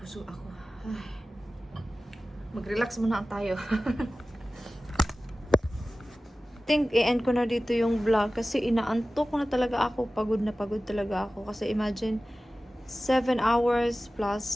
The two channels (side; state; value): both; normal; correlation 0.96